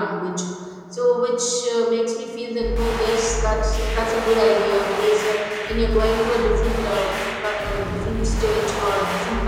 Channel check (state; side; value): identical; both; correlation 1.00